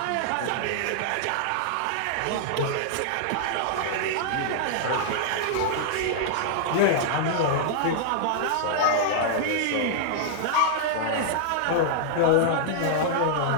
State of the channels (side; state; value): both; different; correlation -0.01